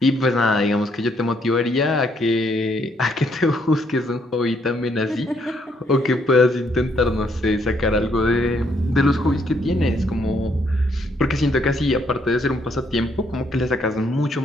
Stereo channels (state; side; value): normal; both; correlation 0.71